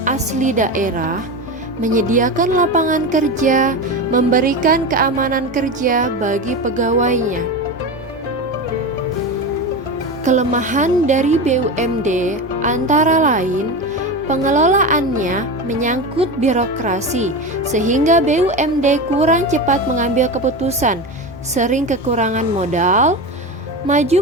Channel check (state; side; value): normal; both; correlation 0.23